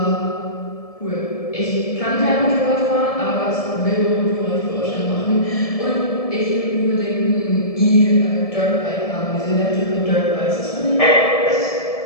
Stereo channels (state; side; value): late; right; 1.7 ms